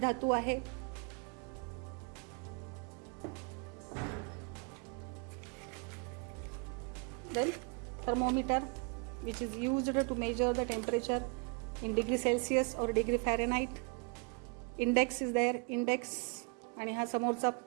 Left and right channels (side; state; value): left; quieter; 34.1 dB